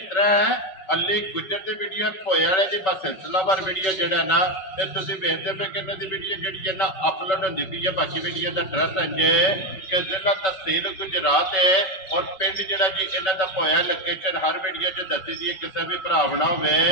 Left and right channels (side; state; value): right; late; 5.3 ms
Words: तरह है अली गुजर की वीडियो होए वाले की बस सिलसिलावार वीडियो जो ना ये तुम वेखते पे कि इन्हों की वीडियो जी ना अपलोड होती पी है। बाकी वीडियो का एड्रैस है कि जिला तहसील गुजरात है और पिंड जोड़ा जी इन्हों का होया लोकेशन हर वीडियो च दसी दी है। किसी भी भरा ना हो